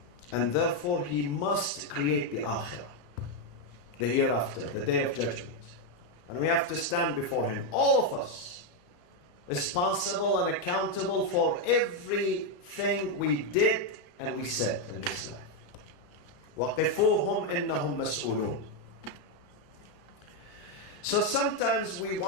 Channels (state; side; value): late; right; 34 ms